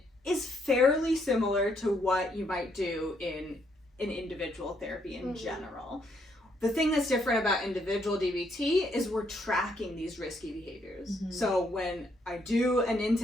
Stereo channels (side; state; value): both; normal; correlation 0.73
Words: is fairly similar to what you might do in an individual therapy in general. The thing that's different about individual DBT is we're tracking these risky behaviors. So when I do an